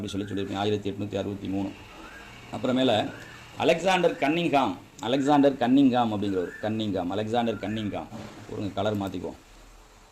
சொல்லியிருப்பீங்க. 1863. அப்புறமேல அலெக்சாண்டர் கன்னிங்காம் அப்படிங்கிற ஒரு அலெக்சாண்டர் கன்னிங்காம் ஒரு கலர் மாற்றிக்குவோம்.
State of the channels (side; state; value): both; identical; correlation 1.00